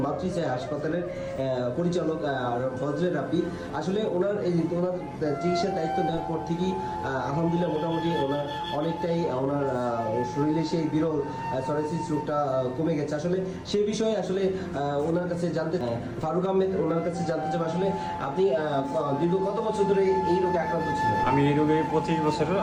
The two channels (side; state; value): both; identical; correlation 1.00